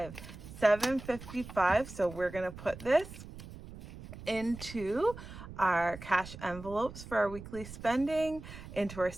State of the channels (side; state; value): right; noise; rumble, 14 dB below the sound